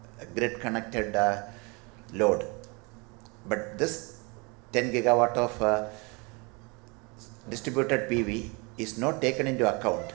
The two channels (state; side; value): quieter; left; 29.7 dB